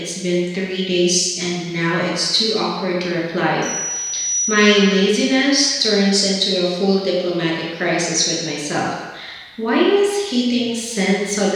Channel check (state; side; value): identical; both; correlation 1.00